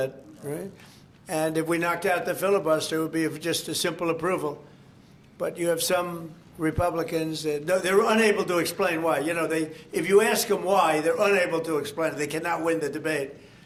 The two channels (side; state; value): both; identical; correlation 1.00